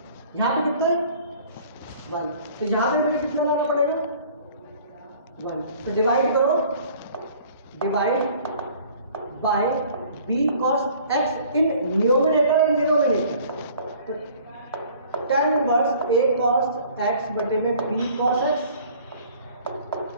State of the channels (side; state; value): both; inverted; correlation -0.52